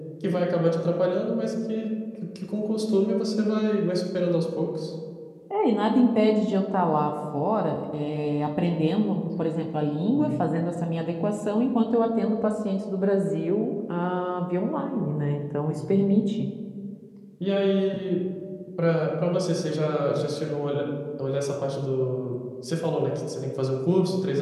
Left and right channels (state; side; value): identical; both; correlation 1.00